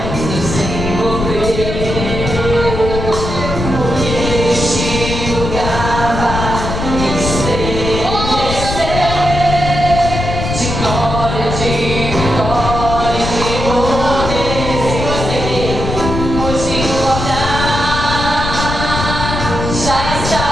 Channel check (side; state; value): left; noise; rumble, 4 dB below the sound